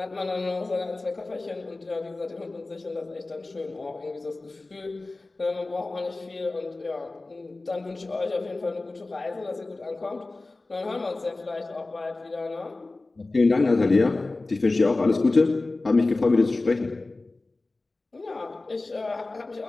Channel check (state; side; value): quieter; right; 3.2 dB